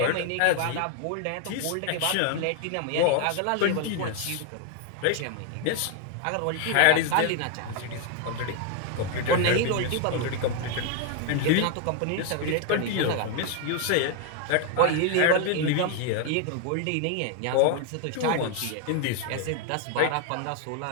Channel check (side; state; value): both; different; correlation 0.01